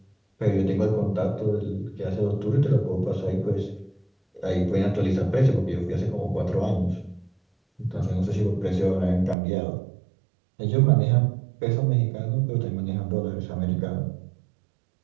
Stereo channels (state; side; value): drops out; left; at 9.3 s